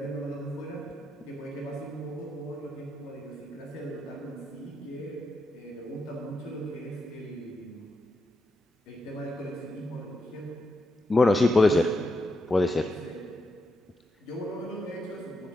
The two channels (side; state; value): both; normal; correlation 0.83